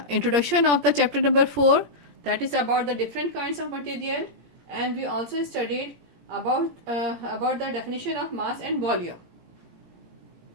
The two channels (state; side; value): late; left; 18 ms